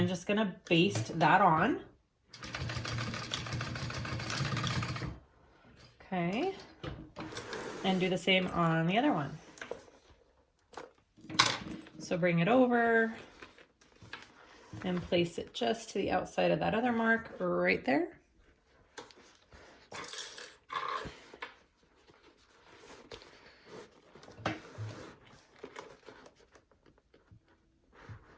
just gonna baste that on. Okay, and do the same on the other one. So bring it over and place it just to the outside of that other mark right there.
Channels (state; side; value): identical; both; correlation 1.00